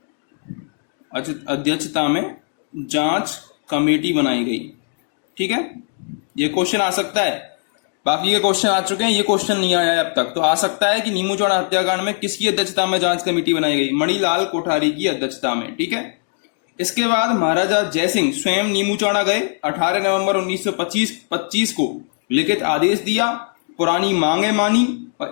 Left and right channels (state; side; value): silent; right; 66 dB below the other